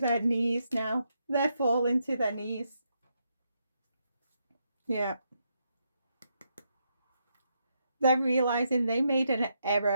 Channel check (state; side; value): inverted; both; correlation -0.80